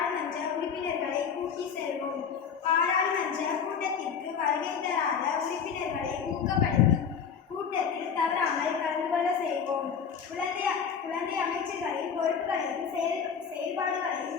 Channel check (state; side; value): quieter; right; 6.9 dB